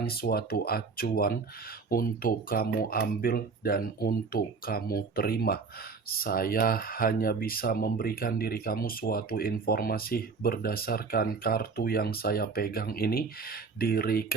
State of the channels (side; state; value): left; quieter; 4.8 dB